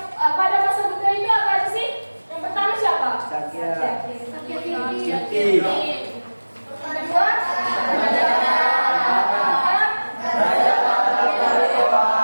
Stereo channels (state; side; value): inverted; both; correlation -1.00